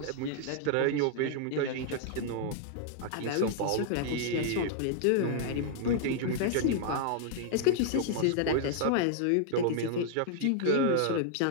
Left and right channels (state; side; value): different; both; correlation -0.01